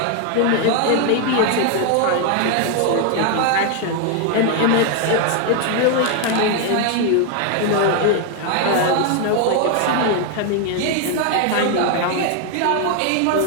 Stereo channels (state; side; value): different; both; correlation 0.00